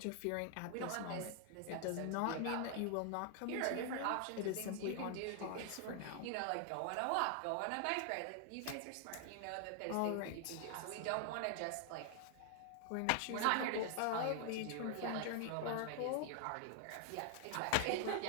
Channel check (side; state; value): both; different; correlation 0.00